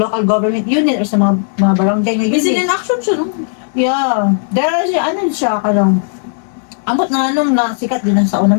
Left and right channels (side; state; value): right; silent; digital silence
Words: government unit or sa mga barangay na unit. Busy in action siya, no? Yeah. There is siya kanang ambot na sikat din sa